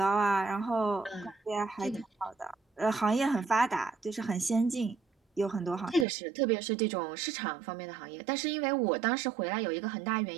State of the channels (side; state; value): left; drops out; at 6.1 s